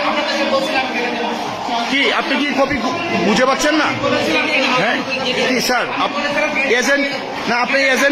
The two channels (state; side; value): identical; both; correlation 1.00